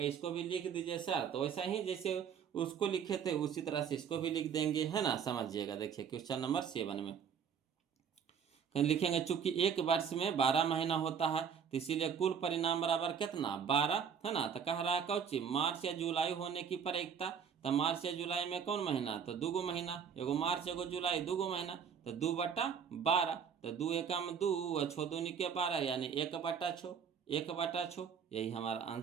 इसको भी लिख दीजिए सर, तो वैसा ही जैसे उसको लिखे थे उसी तरह से इसको भी लिख देंगे, है ना। समझिएगा, देखिए क्वेश्चन नंबर 7 में लिखेंगे, चूंकि एक वर्ष में 12 महीना होता है तो इसीलिए कुल परिणाम बराबर कितना 12, है ना। तो कह रहा है कौची मार्च या जुलाई होने की प्रायिकता। तो मार्च या जुलाई में कौन महीना, तो 2 महीना, एगो मार्च एगो जुलाई 2 महीना, तो 2/12, तो 2 एकम 2 और 6 दूनी के 12 यानी 1/6, 1/6, यही हमारा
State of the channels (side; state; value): left; quieter; 7.3 dB